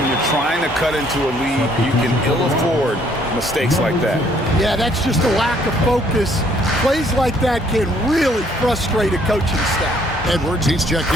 you're trying to cut into a lead, you can ill afford mistakes like that. Yeah, that's just a lack of focus. Plays like that can really frustrate a coaching staff. Edwards, he's checked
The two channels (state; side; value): normal; both; correlation 0.64